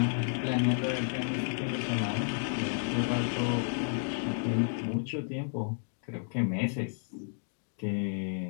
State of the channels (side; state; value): right; silent; digital silence